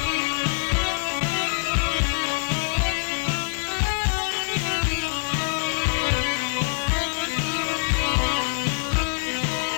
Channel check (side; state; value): right; silent; 62 dB below the other